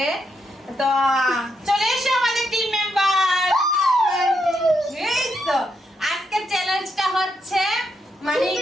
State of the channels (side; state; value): both; normal; correlation 0.80